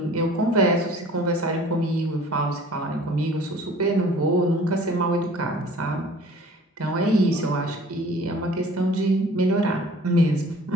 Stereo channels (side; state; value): both; normal; correlation 0.49